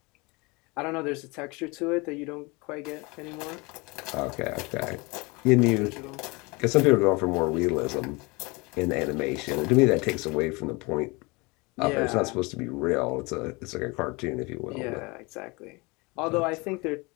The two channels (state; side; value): quieter; right; 26.6 dB